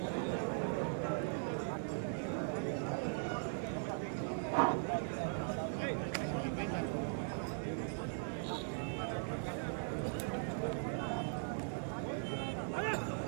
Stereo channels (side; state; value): left; silent; 51 dB below the other